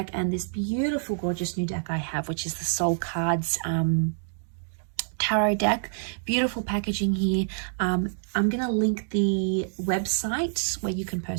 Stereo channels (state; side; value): silent; left; digital silence